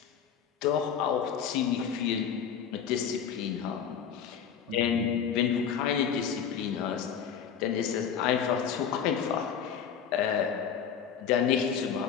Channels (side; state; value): right; quieter; 7.7 dB